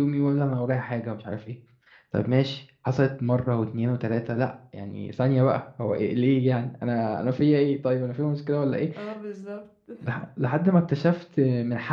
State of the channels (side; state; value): both; identical; correlation 1.00